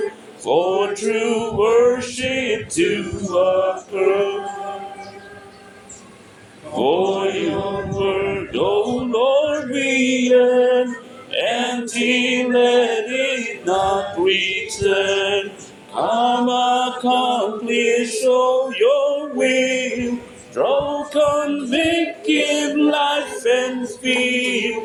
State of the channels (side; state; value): both; identical; correlation 1.00